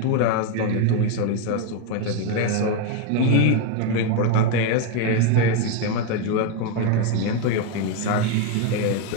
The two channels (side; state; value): both; different; correlation 0.02